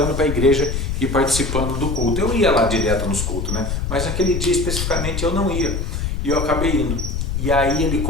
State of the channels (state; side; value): noise; left; rumble, 2 dB below the sound